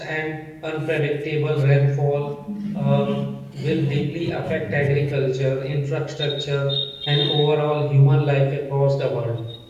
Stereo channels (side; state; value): both; identical; correlation 1.00